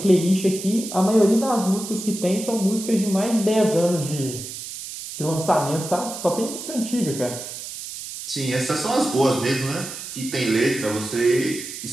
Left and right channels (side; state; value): right; noise; hiss, 9 dB below the sound